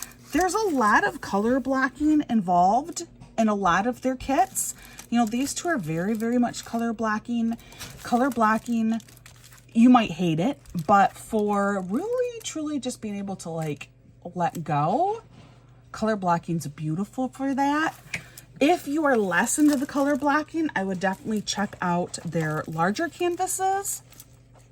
there's a lot of color blocking involved in a lot of their kits. You know, these two are very, very much color blocking. Color blocking, you might hate it, but for really, truly just being able to, like, let go, color blocking's beautiful for that. If you are less into the color blocking, I would definitely check out their larger canvases,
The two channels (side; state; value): both; identical; correlation 1.00